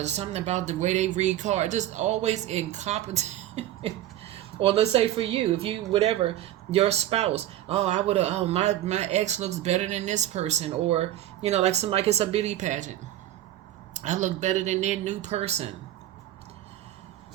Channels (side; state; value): left; quieter; 13.3 dB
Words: There's something about the way they read cards. Just always incompetent. Or let's say for you, if you, whatever, your spouse, my ex looks better than this person. Or, like somebody, it's a beauty pageant. I look better than their new person.